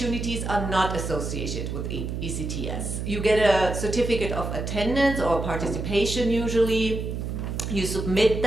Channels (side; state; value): right; noise; hum, 4 dB below the sound